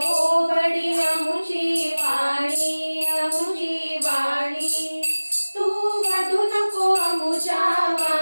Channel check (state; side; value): inverted; both; correlation -1.00